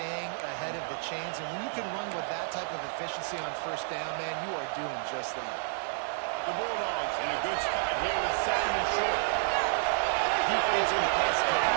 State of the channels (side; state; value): left; silent; digital silence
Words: ahead of the chains, and when you can run with that type of efficiency on first down, man, you are doing just that. The Bulldogs in a good spot here with 2nd and short. Defense in press